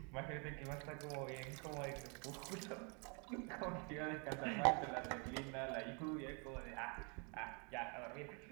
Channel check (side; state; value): left; quieter; 35.0 dB